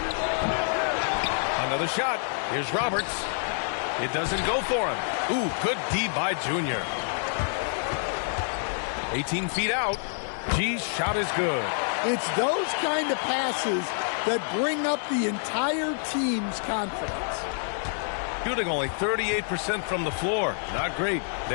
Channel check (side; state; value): right; silent; digital silence